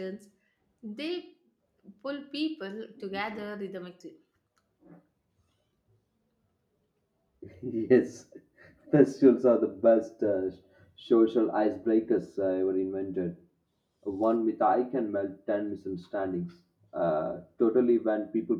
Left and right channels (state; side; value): identical; both; correlation 1.00